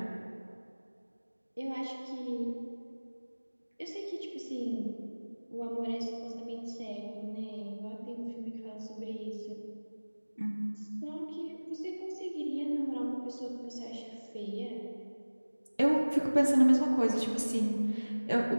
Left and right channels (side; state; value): both; inverted; correlation -1.00